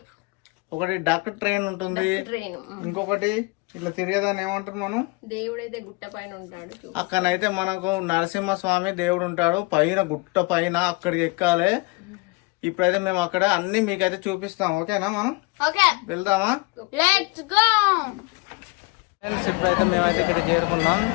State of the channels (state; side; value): quieter; right; 27.6 dB